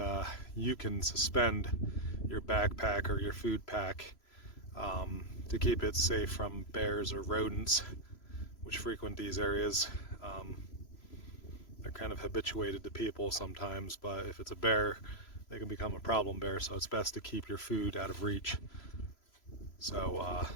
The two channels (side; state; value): right; late; 3.0 ms